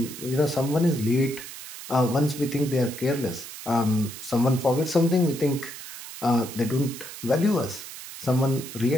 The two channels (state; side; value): noise; right; hiss, 12 dB below the sound